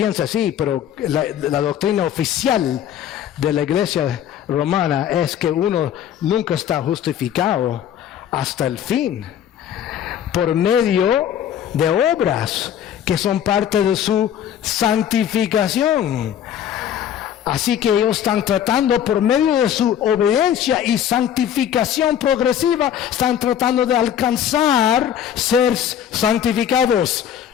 así, pero la doctrina oficial de la iglesia romana es que uno nunca está justificado hasta el fin por medio de obras que son parte de su santificación. Así que ellos están tratando por medio de su obediencia y santificación progresiva, están tratando de alcanzar ser santificados,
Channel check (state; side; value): quieter; right; 9.8 dB